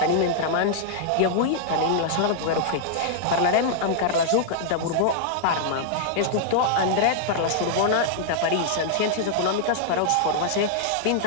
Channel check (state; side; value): different; both; correlation -0.01